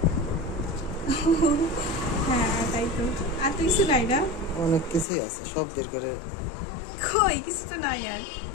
হ্যাঁ তাই তো। আর তো কিছু নাই না? অনেক কিছুই আছে, সব বের করে কই কিছু তো নাই আর।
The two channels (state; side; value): drops out; right; at 5.1 s